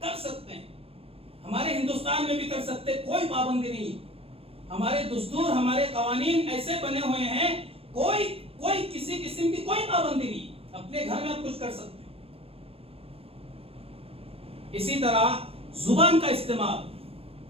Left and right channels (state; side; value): late; left; 0.28 ms